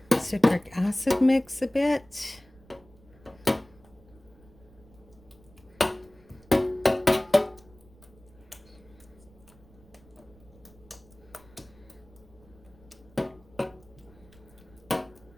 citric acid mix a bit.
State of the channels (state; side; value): noise; right; rumble, 25 dB below the sound